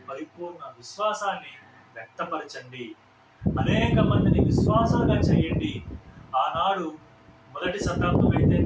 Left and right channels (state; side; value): identical; both; correlation 1.00